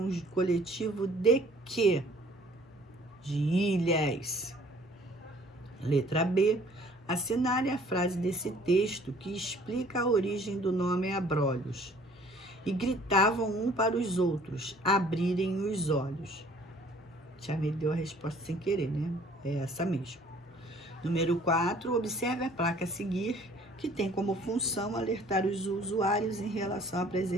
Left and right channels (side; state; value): both; normal; correlation 0.55